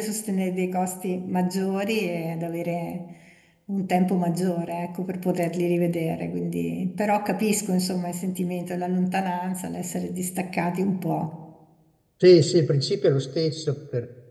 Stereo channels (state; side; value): identical; both; correlation 1.00